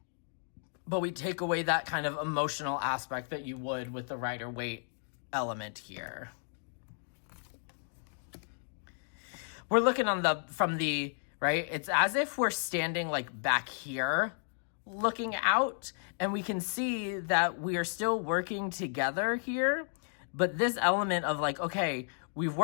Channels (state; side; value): silent; right; digital silence